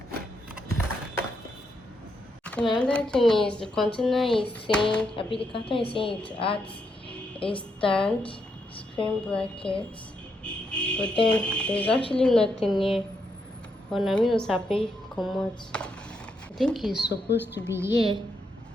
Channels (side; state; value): both; normal; correlation 0.79